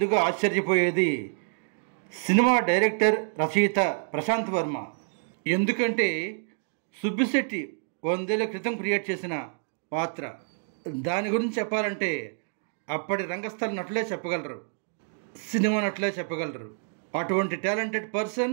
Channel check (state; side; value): silent; left; 60 dB below the other